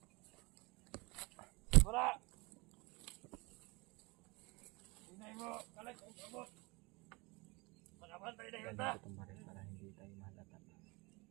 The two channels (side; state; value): left; quieter; 25.9 dB